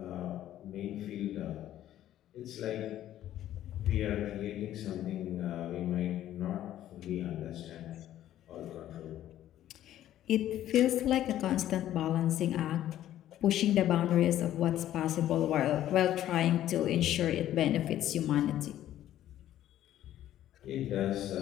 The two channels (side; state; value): right; quieter; 12.5 dB